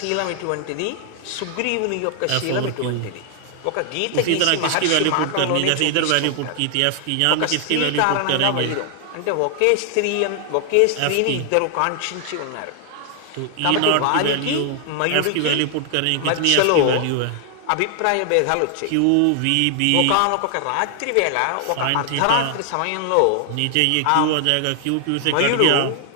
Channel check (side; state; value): both; different; correlation 0.00